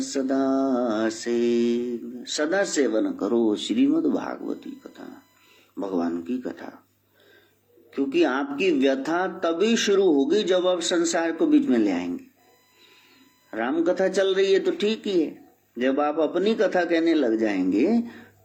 सदा सेव्य, सदा सेवन करो श्रीमद् भागवती कथा, भगवान की कथा। क्योंकि आपकी व्यथा तभी शुरू होगी जब आप संसार को बीच में ले आएंगे। राम कथा चल रही है तो ठीक ही है, जब आप अपनी कथा कहने लग जाएंगे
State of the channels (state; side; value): identical; both; correlation 1.00